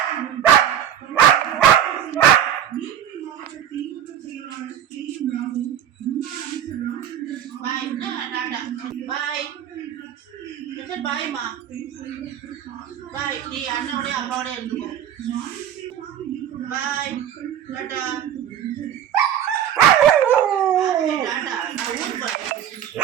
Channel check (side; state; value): left; quieter; 10.1 dB